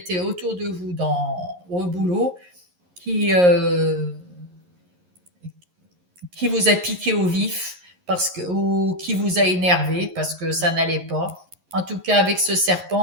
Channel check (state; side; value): late; left; 11 ms